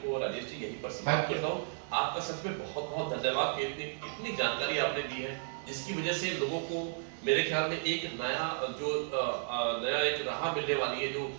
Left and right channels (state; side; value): silent; left; 55 dB below the other